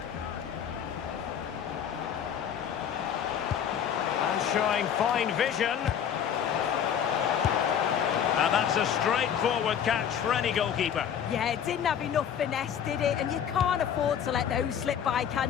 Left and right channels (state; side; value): quieter; right; 8.6 dB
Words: And showing fine vision. And that's a straightforward catch for any goalkeeper. Yeah, it didn't have enough finesse, did it? And you can't afford to let those slip by,